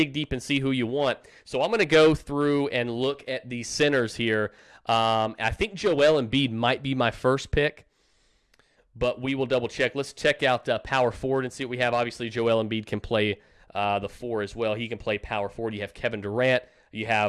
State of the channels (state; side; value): identical; both; correlation 1.00